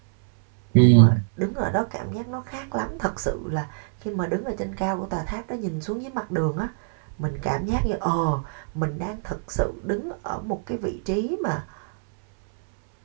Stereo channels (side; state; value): left; silent; 60 dB below the other